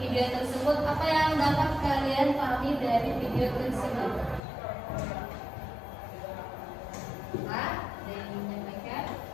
video tersebut, apa yang dapat kalian pahami dari video tersebut? Pak, ada yang menyampaikan?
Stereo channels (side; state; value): right; drops out; at 4.4 s